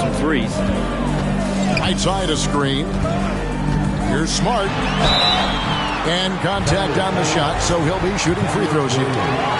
threes. Right side a screen. Here's Smart. And contact on the shot, so he'll be shooting free throws here.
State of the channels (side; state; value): both; identical; correlation 1.00